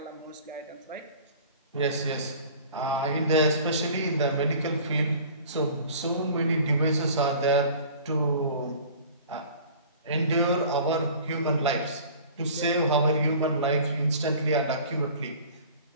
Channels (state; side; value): inverted; both; correlation -0.45